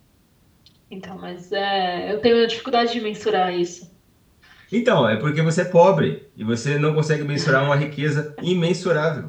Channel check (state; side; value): identical; both; correlation 1.00